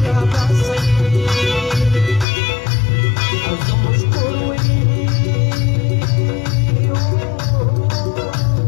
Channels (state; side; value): drops out; right; at 2.2 s